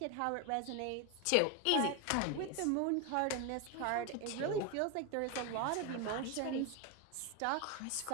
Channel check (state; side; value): different; both; correlation 0.01